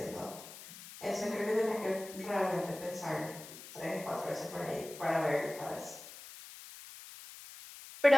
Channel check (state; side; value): noise; left; hiss, 15 dB below the sound